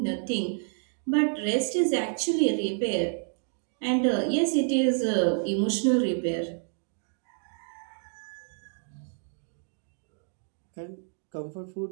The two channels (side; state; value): left; silent; 59 dB below the other